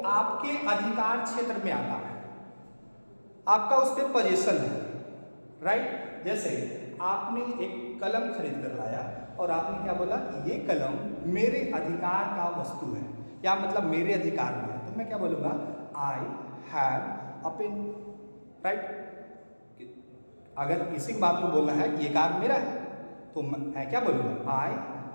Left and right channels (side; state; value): both; inverted; correlation -1.00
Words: आपके अधिकार क्षेत्र में आता है, आपका उस पर पोजीशन है, राइट। जैसे आपने एक कलम खरीद कर लाया और आपने क्या बोला कि ये कलम मेरे अधिकार का वस्तु है, या मतलब मेरे अधिकार में है, तो मैं क्या बोलूँगा, I have a pen, right. अगर इसी बात को बोलना है कि ये कार मेरा है तो मैं क्या बोलूँगा, आई